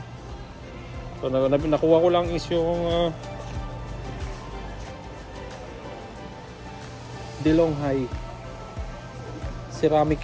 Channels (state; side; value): identical; both; correlation 1.00